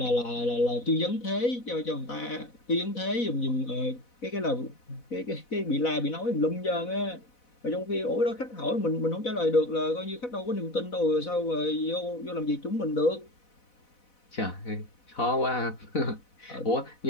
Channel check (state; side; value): late; right; 4.1 ms